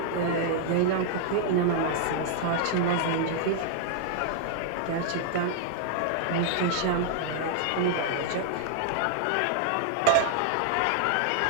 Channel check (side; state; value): both; different; correlation -0.01